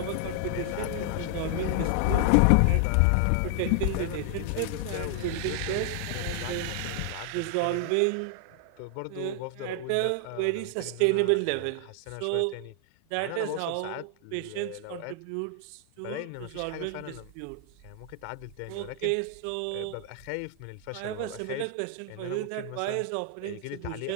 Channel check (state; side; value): different; both; correlation 0.00